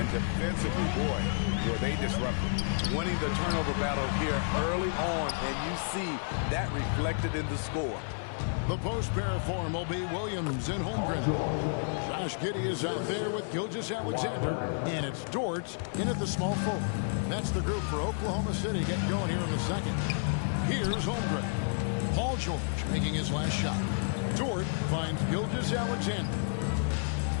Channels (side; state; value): right; silent; digital silence